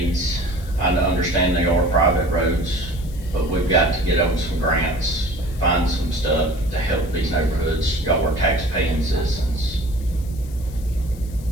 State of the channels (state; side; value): noise; left; hiss, 22 dB below the sound